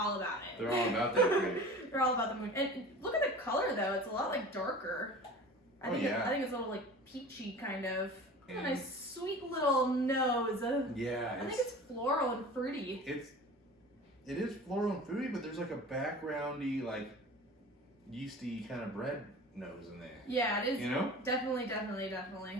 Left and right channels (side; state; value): both; normal; correlation 0.39